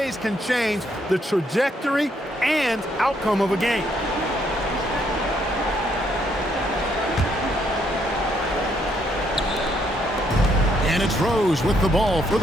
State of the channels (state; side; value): normal; both; correlation 0.72